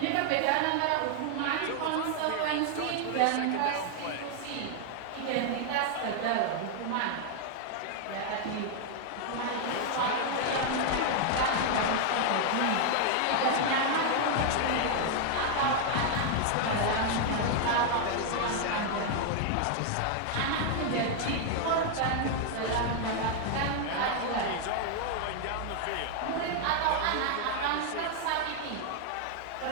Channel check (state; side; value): different; both; correlation 0.00